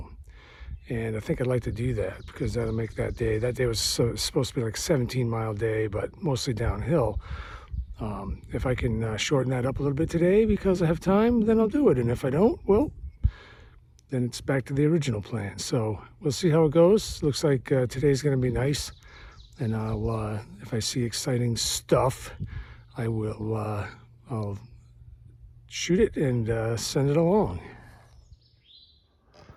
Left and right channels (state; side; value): identical; both; correlation 1.00